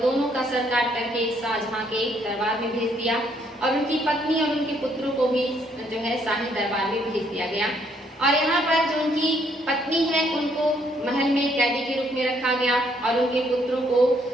दोनों का सर काट करके शाहजहां के दरबार में भेज दिया और उनकी पत्नी और उनके पुत्रों को भी जो है शाही दरबार में भेज दिया गया। और यहाँ पर जो उनकी पत्नी है उनको महल में कैदी के रूप में रखा गया और उनके पुत्रों को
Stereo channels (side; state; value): both; normal; correlation 0.69